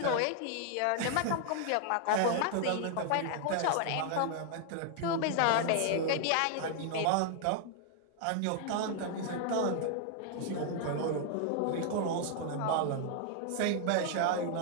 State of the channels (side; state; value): both; different; correlation 0.00